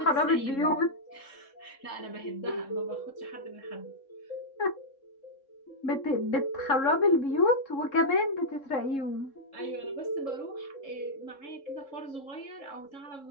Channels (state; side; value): late; right; 3.7 ms